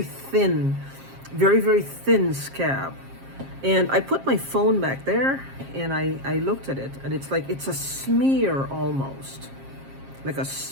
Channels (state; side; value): late; left; 7.5 ms